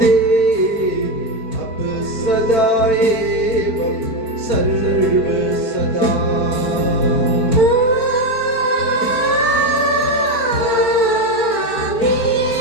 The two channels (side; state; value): right; late; 4.5 ms